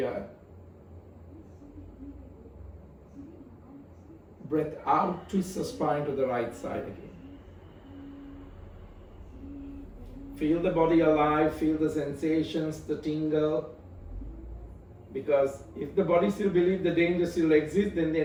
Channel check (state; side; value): identical; both; correlation 1.00